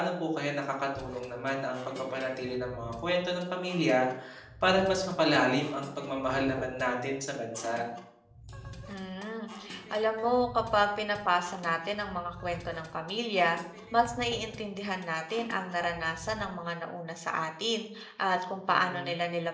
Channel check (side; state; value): both; identical; correlation 1.00